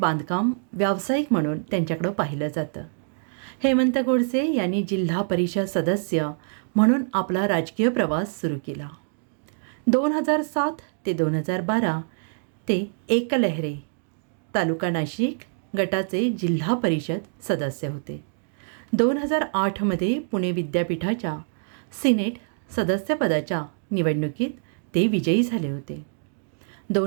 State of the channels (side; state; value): left; silent; digital silence